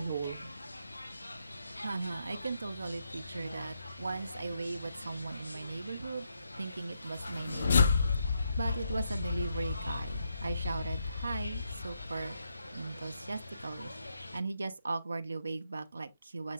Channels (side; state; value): both; inverted; correlation -0.80